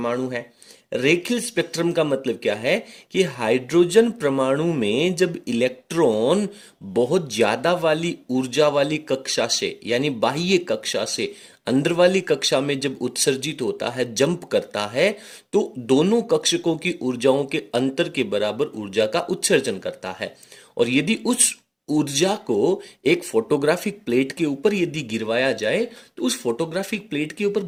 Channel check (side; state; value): both; identical; correlation 1.00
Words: है। रेखीय स्पेक्ट्रम का मतलब क्या है कि हाइड्रोजन परमाणु में जब इलेक्ट्रॉन बहुत ज्यादा वाली ऊर्जा वाली कक्षा से यानी बाह्य कक्षा से अंदर वाली कक्षा में जब उत्सर्जित होता है, जंप करता है, तो दोनों कक्षकों की ऊर्जाओं के अंतर के बराबर ऊर्जा का उत्सर्जन करता है। और यदि उस ऊर्जा को एक फोटोग्राफिक प्लेट के ऊपर यदि गिरवाया जाए तो उस फोटोग्राफिक प्लेट के ऊपर